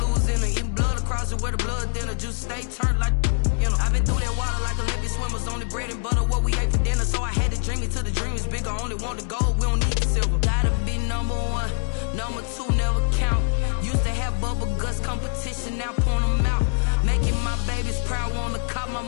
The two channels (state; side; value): silent; right; 63 dB below the other